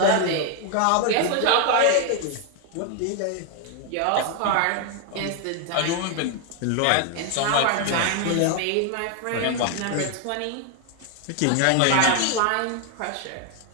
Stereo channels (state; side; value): different; both; correlation 0.01